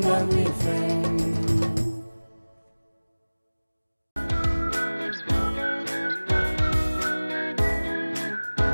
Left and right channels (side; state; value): both; inverted; correlation -1.00